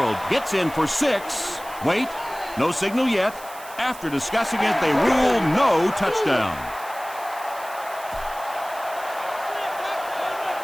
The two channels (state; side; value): noise; right; hiss, 17 dB below the sound